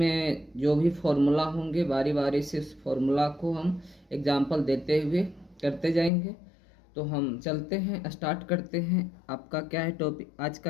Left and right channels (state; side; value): drops out; right; at 6.1 s